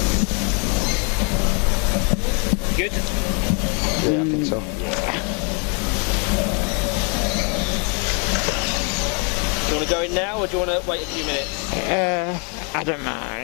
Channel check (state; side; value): quieter; right; 36.7 dB